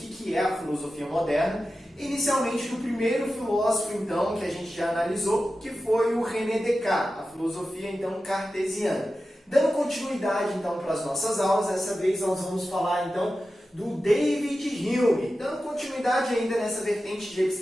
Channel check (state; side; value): normal; both; correlation 0.93